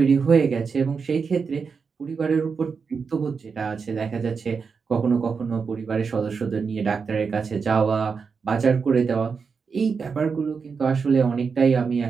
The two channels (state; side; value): quieter; left; 5.5 dB